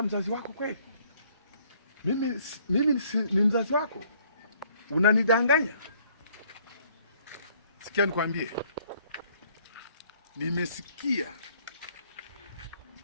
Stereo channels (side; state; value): both; inverted; correlation -0.62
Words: mzazi wako kweli? Mimi ni mzazi wako. Unanidanganya? Sikia nikwambie. Nimesikia